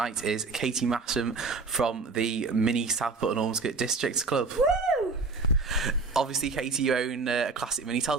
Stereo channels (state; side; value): quieter; left; 4.1 dB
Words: is Katie Masham from the Mini Southport and Ormskirk District Club. Woo! Obviously, Katie, you own a classic Mini. Tell